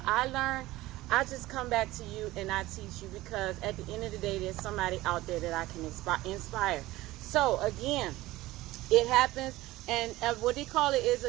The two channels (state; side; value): quieter; left; 17.9 dB